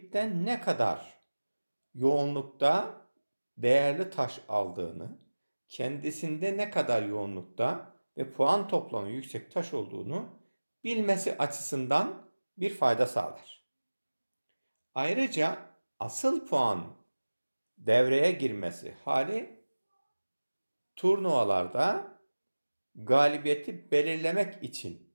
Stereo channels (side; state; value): both; inverted; correlation -1.00